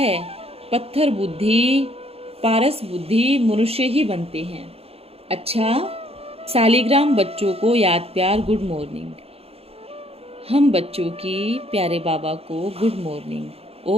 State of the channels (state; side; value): late; left; 0.29 ms